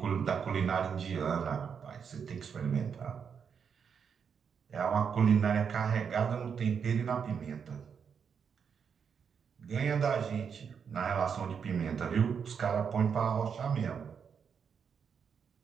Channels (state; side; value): quieter; left; 6.8 dB